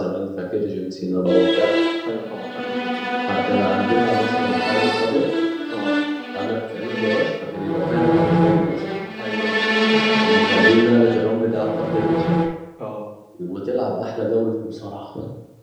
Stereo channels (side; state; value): both; identical; correlation 1.00